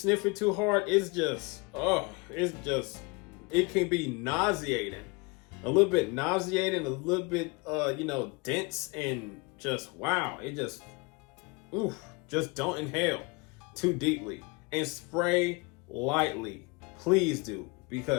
it too hard, it can be nauseating. A little bit nauseating, a little bit, dense, and just, wow. It just don't inhale too deeply and spray lightly. Please do,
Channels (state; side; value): quieter; right; 27.7 dB